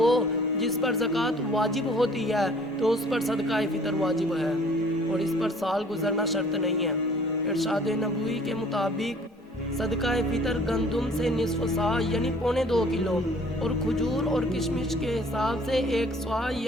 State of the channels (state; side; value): normal; both; correlation 0.53